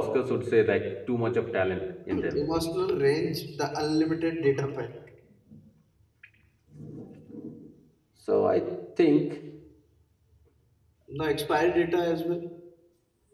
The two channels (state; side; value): identical; both; correlation 1.00